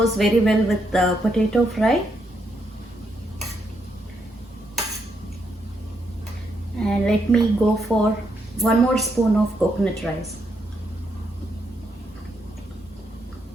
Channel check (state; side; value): normal; both; correlation 0.78